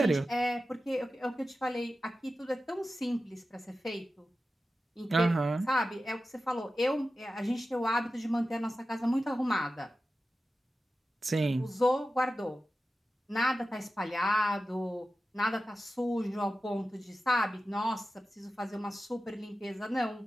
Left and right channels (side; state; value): both; normal; correlation 0.93